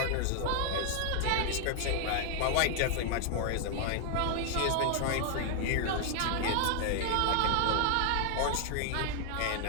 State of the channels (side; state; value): both; different; correlation 0.00